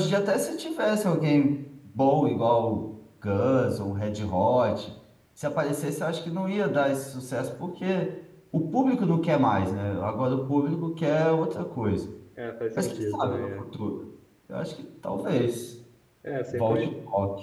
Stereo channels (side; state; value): both; identical; correlation 1.00